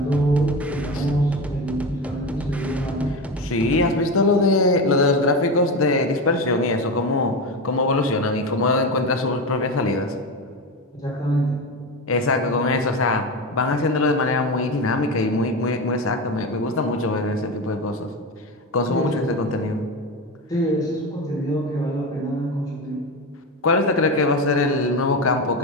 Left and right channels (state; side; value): normal; both; correlation 0.20